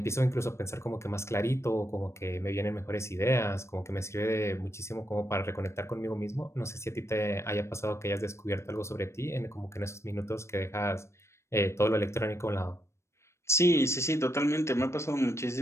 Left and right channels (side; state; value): right; late; 0.13 ms